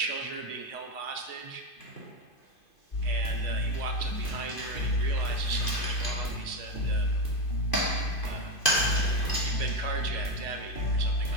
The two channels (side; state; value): right; late; 2.5 ms